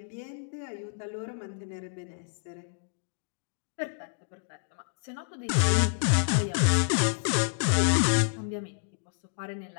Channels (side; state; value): right; silent; digital silence